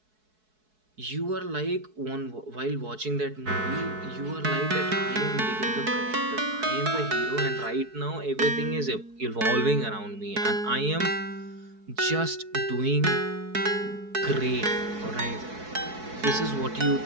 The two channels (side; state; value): left; late; 4.6 ms